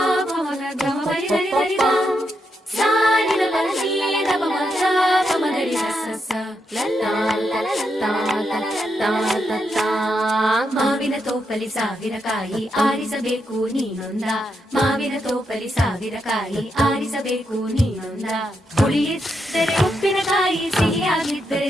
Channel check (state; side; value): normal; both; correlation 0.82